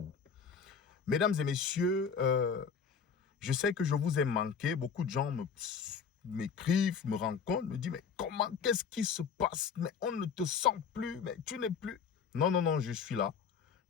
Mesdames et messieurs, je sais que je vous ai manqué. Beaucoup de gens m'écrivent, me rencontrent, me disent, mais comment, qu'est-ce qui se passe? Mais on ne te sent plus, mais tu n'es plus. Non, non, non, je suis là.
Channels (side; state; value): right; quieter; 6.4 dB